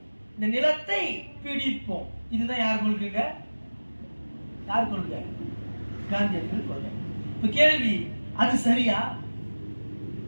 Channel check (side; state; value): both; inverted; correlation -1.00